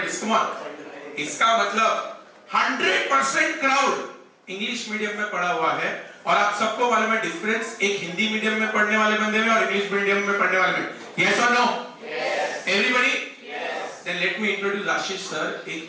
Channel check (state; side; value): identical; both; correlation 1.00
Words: is, come on. इसका मतलब 100% क्राउड इंग्लिश मीडियम में पढ़ा हुआ है. और आप सबको मालूम है डिफरेंस एक हिंदी मीडियम में पढ़ने वाले बंदे में और इंग्लिश मीडियम में पढ़ने वाले में. यस और no? Everybody? Then let me introduce Ashish sir.